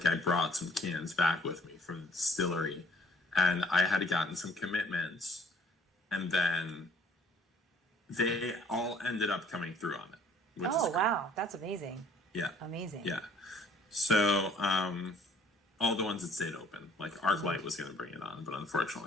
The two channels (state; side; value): normal; both; correlation 0.58